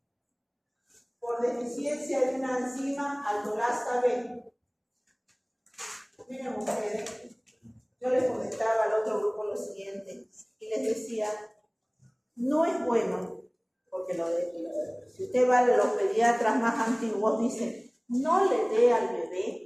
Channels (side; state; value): both; identical; correlation 1.00